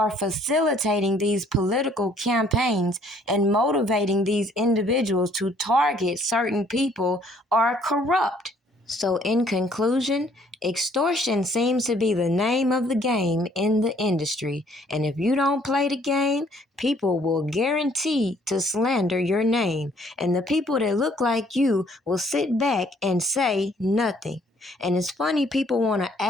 facilitating these political campaigns and motivating these individuals to target certain people are corrupt. So, in conclusion, extortion seems to be the name of the game in the industry. And if you don't play the game, people will guarantee to slander your name. And the people that look like you will sit back and say nothing. And it's funny people want to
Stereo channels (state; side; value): normal; both; correlation 0.62